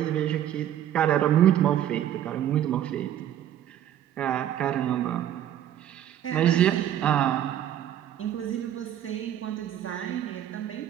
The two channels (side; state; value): left; quieter; 11.1 dB